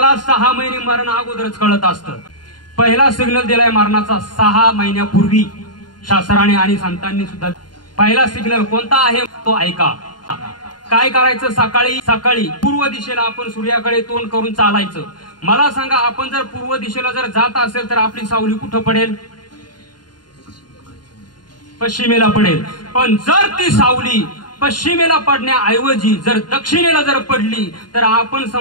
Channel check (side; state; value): right; late; 0.70 ms